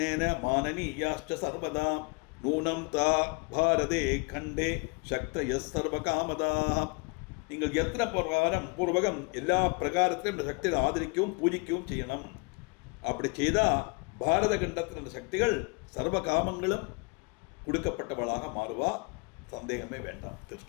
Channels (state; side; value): quieter; right; 30.7 dB